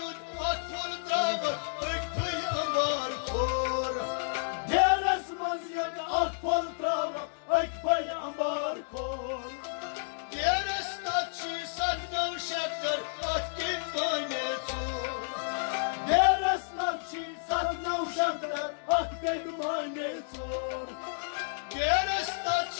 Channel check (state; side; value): silent; right; 57 dB below the other